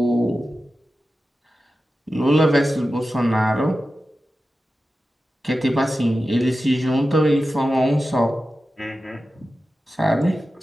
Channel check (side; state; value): both; normal; correlation 0.93